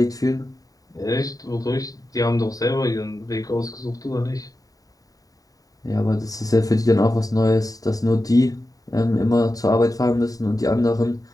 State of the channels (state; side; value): late; right; 0.18 ms